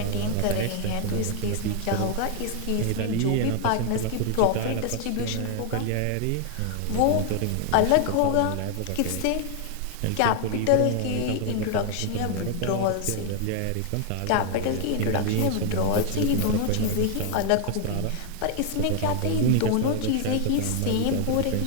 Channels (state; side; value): different; both; correlation 0.00